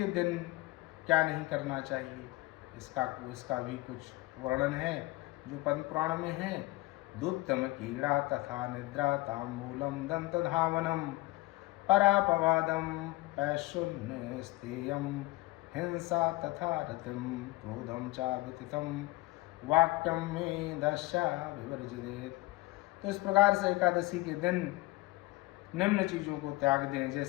दिन क्या नहीं करना चाहिए, इसका भी कुछ वर्णन है जो पद्म पुराण में है। दुत्तम कीड़ा तथा निद्रा तांबूलम दंत धावनम परापवादम पैशुन्य स्तेयम हिंसा तथा रतिम क्रोधम चा व्यतीतम वाक्यम में दशा विवर्जित। तो इस प्रकार से एकादशी के दिन निम्न चीजों को त्याग दें,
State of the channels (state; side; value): quieter; right; 20.5 dB